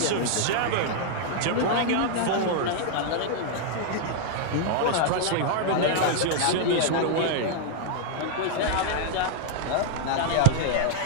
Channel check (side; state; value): both; different; correlation 0.00